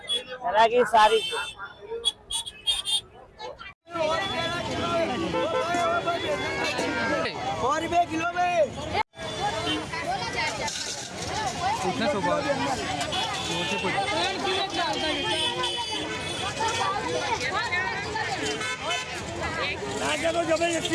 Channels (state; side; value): identical; both; correlation 1.00